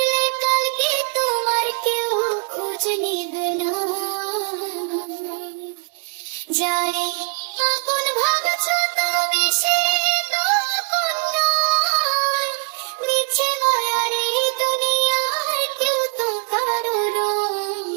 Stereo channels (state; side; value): quieter; left; 37.3 dB